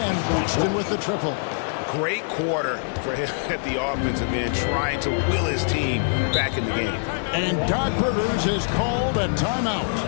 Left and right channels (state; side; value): silent; right; digital silence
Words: Boston with the triple. Great quarter for him at the offensive end, trying to will his team back in the game. And Doc Rivers has called a timeout.